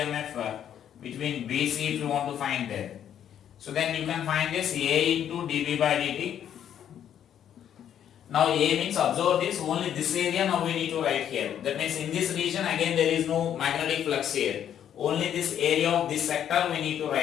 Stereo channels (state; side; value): quieter; right; 9.8 dB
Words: between BC if you want to find there. So then you can find this A into dB by dt. Now A means, observe this, only this area now we need to write here. That means in this region again there is no magnetic flux here. Only this area of this sector we need to